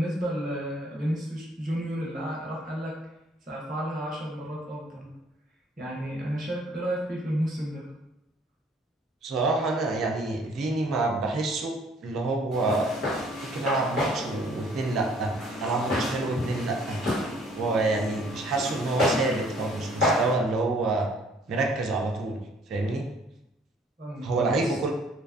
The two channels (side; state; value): both; normal; correlation 0.59